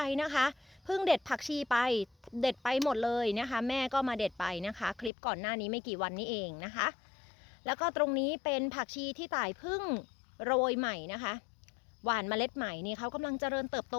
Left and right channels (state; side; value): drops out; right; at 5.1 s